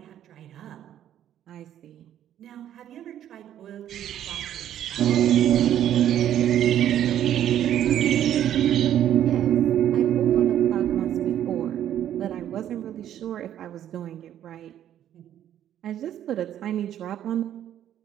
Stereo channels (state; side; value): quieter; left; 11.0 dB